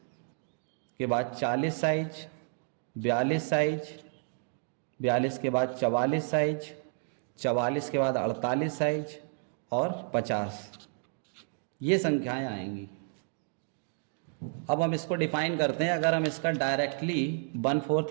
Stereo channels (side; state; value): left; silent; 57 dB below the other